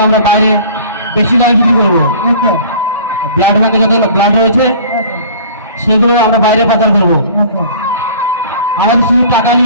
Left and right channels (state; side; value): inverted; both; correlation -0.46